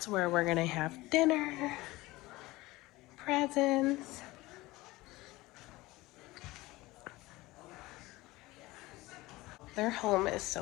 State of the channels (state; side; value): quieter; right; 19.8 dB